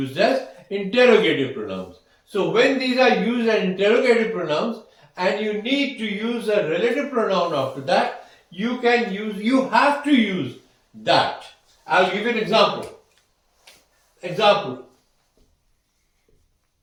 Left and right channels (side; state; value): both; identical; correlation 1.00